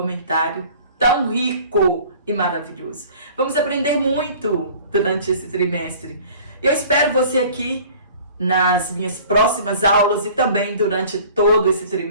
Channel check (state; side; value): inverted; both; correlation -0.47